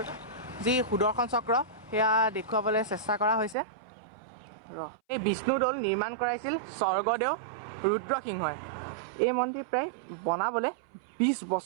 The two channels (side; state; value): left; drops out; at 3.6 s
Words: যি সুদৰ্শন চক্ৰ, সেয়া দেখুৱাবলৈ চেষ্টা কৰা হৈছে। এই বিষ্ণুদৌল নিৰ্মাণ কৰাইছিল স্বৰ্গদেউ ৰুদ্ৰসিংহই। এই মন্দিৰ প্ৰায় বনাবলৈ 20